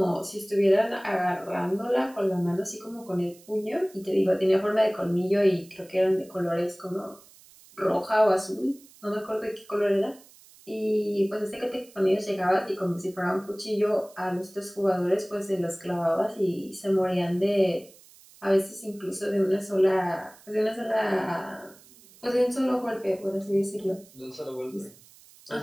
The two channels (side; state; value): right; noise; hiss, 25 dB below the sound